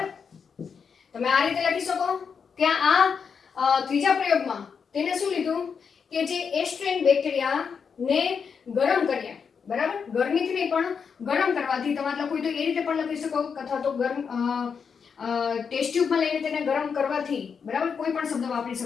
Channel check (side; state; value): right; quieter; 6.3 dB